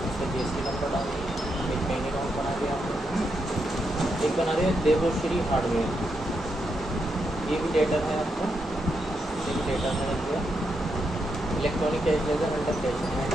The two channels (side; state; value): both; normal; correlation 0.82